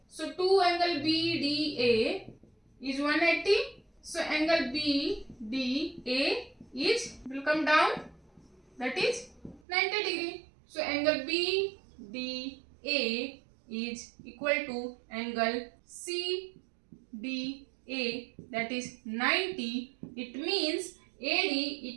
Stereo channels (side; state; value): left; drops out; at 9.6 s